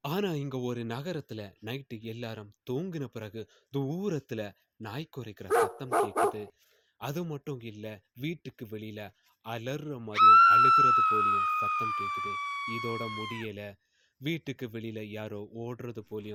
ஆனா இங்க ஒரு நகரத்துல நைட்டு எல்லாரும் தூங்கின பிறகு தூரத்துல நாய் குறைக்கிற சத்தம் கேக்குது. அது மட்டும் இல்ல, வீட்டுக்கு வெளியில அலறுற மாதிரியும் அழுகிறது போலியும் சத்தம் கேக்குது. இதோட முடியல, வீட்டுக்கு வெளியில யாரோ ஓடுறது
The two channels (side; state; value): both; identical; correlation 1.00